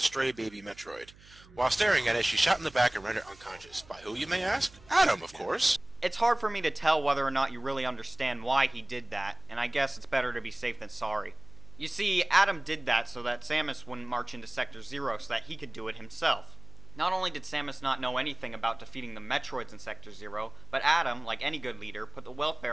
stray baby Metroid. While staring at it, she's shot in the back and rendered unconscious. By who, you may ask? Adam, of course. It's hard for me to tell whether or not you really understand why he did that, and I guess it's better to be safe than sorry. You see, Adam did that so that Samus wouldn't march into Sector 0 so that he could do it himself. Not only did Samus not know anything about defeating the Metroids in Sector 0, but Adam, like any good leader, put the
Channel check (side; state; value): right; noise; hum, 23 dB below the sound